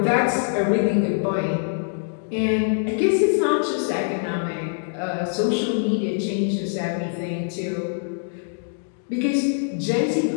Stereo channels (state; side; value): silent; right; digital silence